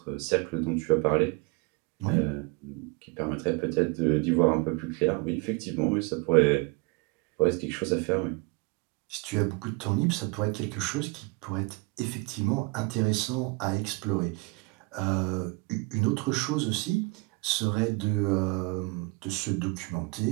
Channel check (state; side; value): quieter; left; 26.6 dB